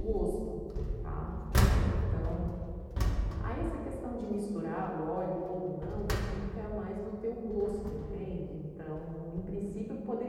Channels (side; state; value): both; identical; correlation 1.00